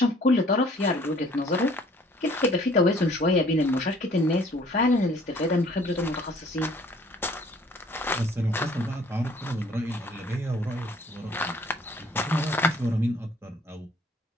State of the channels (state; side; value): normal; both; correlation 0.57